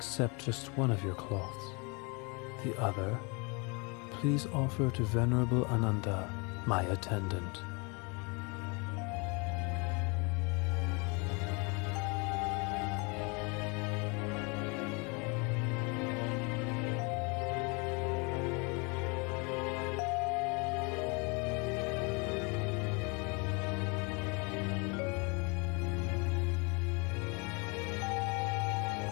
just one of your cloths. The other, please offer to Venerable Ananda, my attendant.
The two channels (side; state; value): right; quieter; 30.9 dB